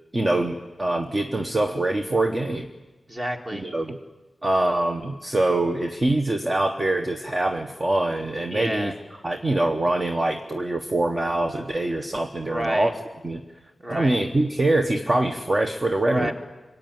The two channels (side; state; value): both; normal; correlation 0.95